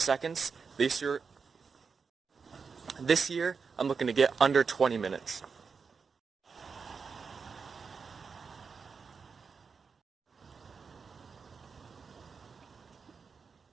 This year I'm looking to get under 20 minutes.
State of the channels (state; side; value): quieter; left; 5.4 dB